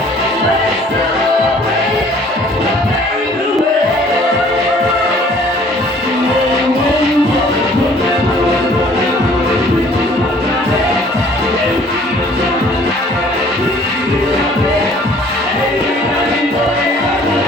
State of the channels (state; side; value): normal; both; correlation 0.55